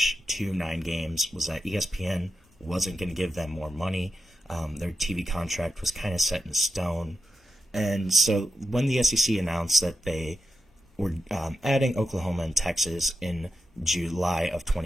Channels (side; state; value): both; normal; correlation 0.89